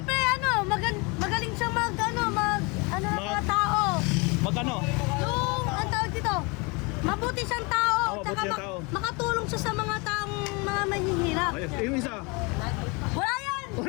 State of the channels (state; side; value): quieter; right; 28.8 dB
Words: magaling siyang mga tao. Magano? Yung, ang tawag dito, mabuti siyang tao. Mabuti siyang tao. Makatulong siya sa mga taong mga mahihirap. Ayos. Yung isa. Wala yan!